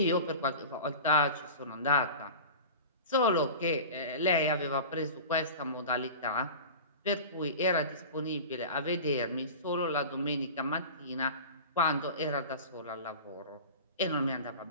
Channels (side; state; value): both; inverted; correlation -0.34